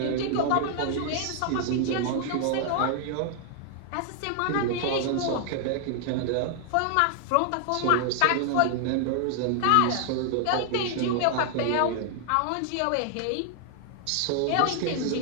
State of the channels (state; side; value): different; both; correlation 0.00